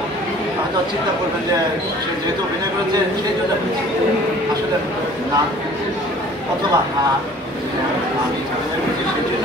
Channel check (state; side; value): normal; both; correlation 0.50